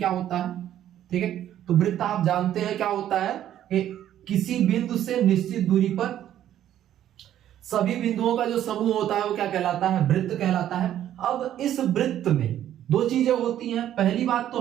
होता है। ठीक है, तो वृत्त आप जानते हैं क्या होता है कि किसी बिंदु से निश्चित दूरी पर सभी बिंदुओं का जो समूह होता है वो क्या कहलाता है, वृत्त कहलाता है। अब इस वृत्त में दो चीजें होती हैं। पहली बात तो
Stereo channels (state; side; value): quieter; left; 11.5 dB